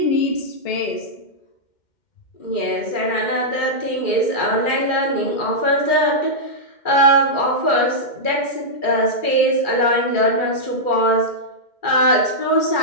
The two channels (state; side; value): late; right; 2.1 ms